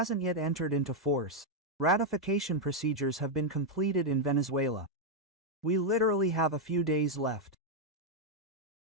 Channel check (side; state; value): both; normal; correlation 0.00